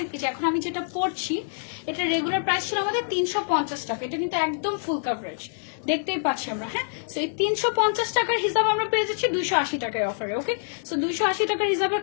এখন আমি যেটা পড়ছি এটা রেগুলার প্রাইস ছিল আমাদের 350 টাকা। এটা কিন্তু একদম ফুল কভারেজ, দেখতেই পাচ্ছি আমরা। হ্যাঁ সো এই 350 টাকার হিসাব আমরা পেয়ে যাচ্ছি 280 টাকায় অফারে। ওকে সো 280 টাকার হিসাবের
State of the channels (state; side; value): silent; right; digital silence